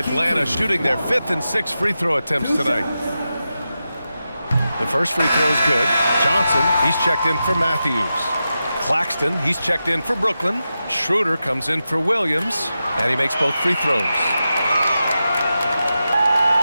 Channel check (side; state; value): both; inverted; correlation -0.90